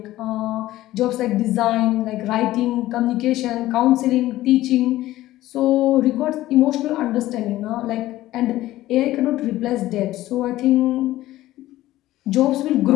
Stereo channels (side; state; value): right; quieter; 15.6 dB